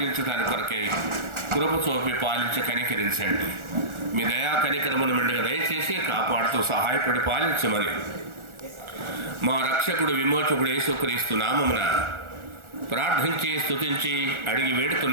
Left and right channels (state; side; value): late; left; 1.4 ms